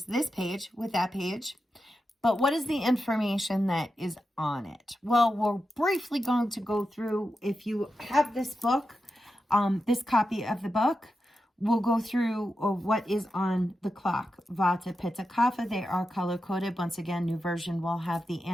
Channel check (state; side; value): normal; both; correlation 0.89